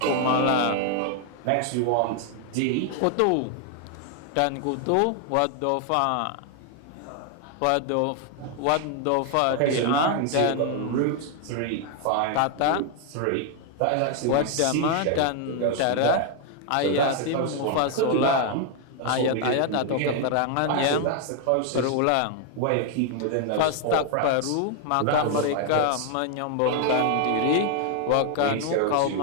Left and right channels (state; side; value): different; both; correlation 0.00